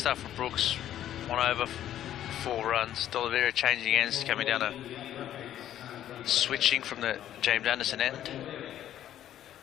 from Brooks. 1 over, 4 runs. D'Oliveira changing ends, coming down switching from the James Anderson end.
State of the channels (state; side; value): quieter; right; 11.6 dB